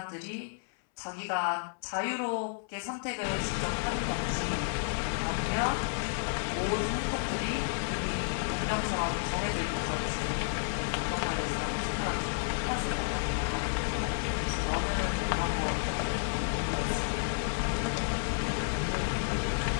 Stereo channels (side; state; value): right; silent; 57 dB below the other